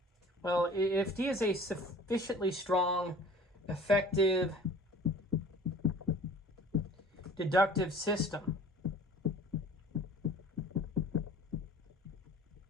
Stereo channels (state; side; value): normal; both; correlation 0.46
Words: well, if D is a sufficiently strong, effective, deductive system,